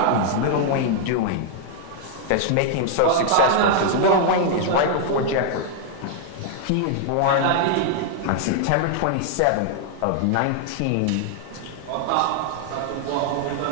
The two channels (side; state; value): both; different; correlation 0.00